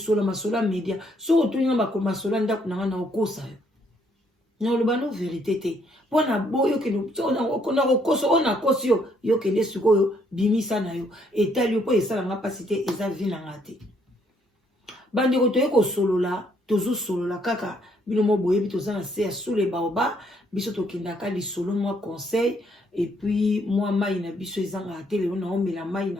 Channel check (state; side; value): normal; both; correlation 0.69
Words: masola media so otolinga makomasola ndaku nanga na okosa yo na olobano vérité te pona boyo keno na okoso ona kosi yo yo kende sikoyo bimisa na yo etali yo po esala nga pasi te eza vie nanga te bandeko toye kosolola tozo solola kaka bino mo boyebi toza na se sous les baobas biso tokendaka lisolo moi conseil et puis moi mai na biso ezanga te lelo na omela mai